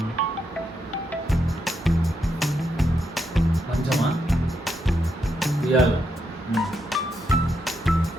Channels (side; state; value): both; normal; correlation 0.81